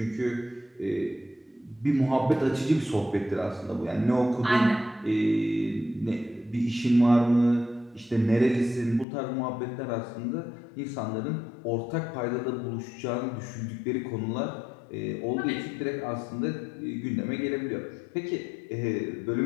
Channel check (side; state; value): right; drops out; at 9.1 s